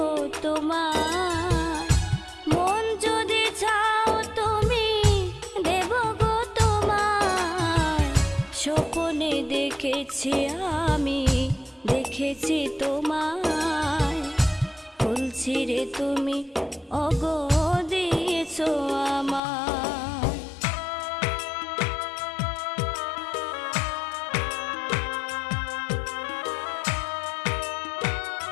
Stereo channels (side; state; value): right; drops out; at 19.4 s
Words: তোমার, মন যদি চাও তুমি দেব গো তোমার। স্বপনে দেখেছি আমি, দেখেছি তোমায় ফুল ছিঁড়ে তুমি ওগো দিয়েছো আমায়।